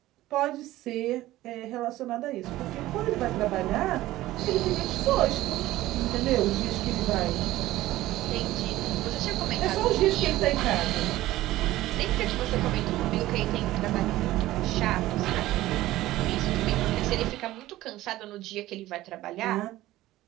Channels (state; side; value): quieter; left; 16.1 dB